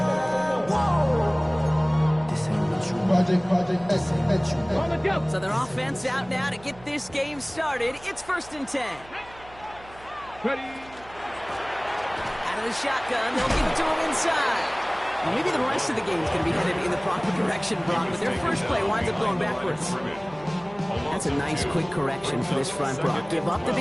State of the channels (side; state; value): right; noise; hum, 22 dB below the sound